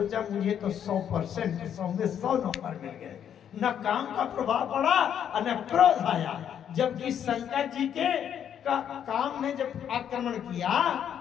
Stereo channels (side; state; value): right; quieter; 9.1 dB